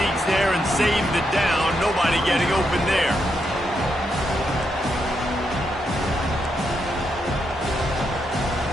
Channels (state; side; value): normal; both; correlation 0.81